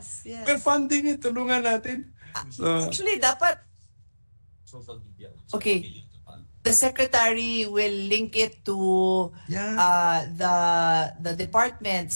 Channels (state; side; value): inverted; both; correlation -1.00